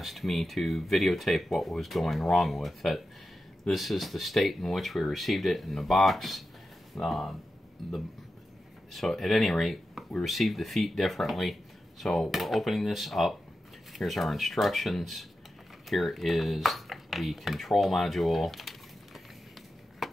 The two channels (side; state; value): both; normal; correlation 0.91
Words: me to videotape what was going wrong with it. This is the state in which we received it in the box. So at any rate, we received the feet differently. So we're opening this up. Here's our instructions. Here is the control module.